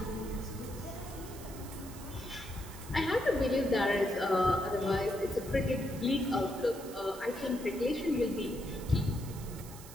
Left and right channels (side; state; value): right; noise; hiss, 16 dB below the sound